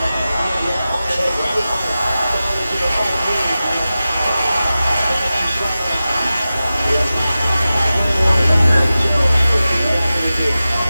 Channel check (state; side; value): inverted; both; correlation -0.95